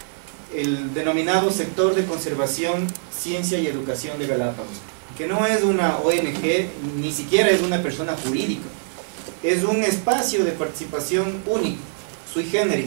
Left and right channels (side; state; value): left; silent; 63 dB below the other